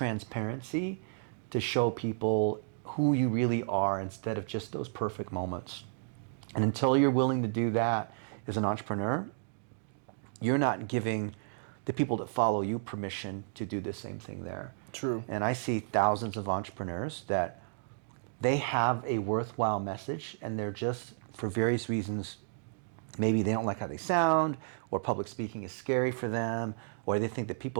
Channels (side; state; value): left; silent; digital silence